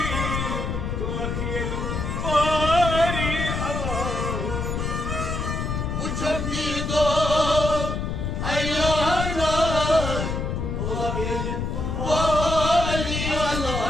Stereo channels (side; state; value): left; noise; rumble, 2 dB below the sound